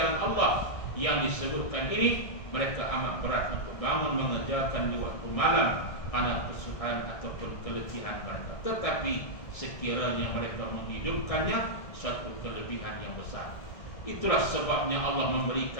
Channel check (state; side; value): late; right; 1.6 ms